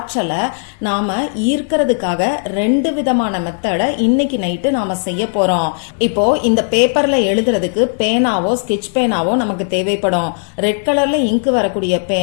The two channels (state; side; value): silent; right; 59 dB below the other